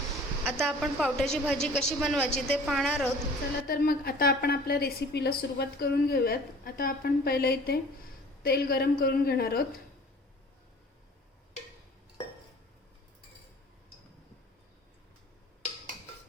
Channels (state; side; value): normal; both; correlation 0.47